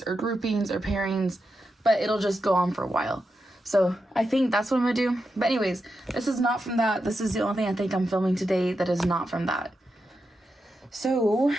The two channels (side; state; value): both; normal; correlation 0.87